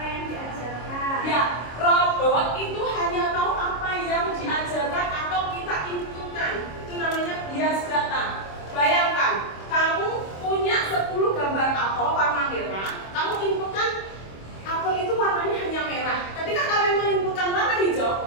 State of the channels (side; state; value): right; late; 26 ms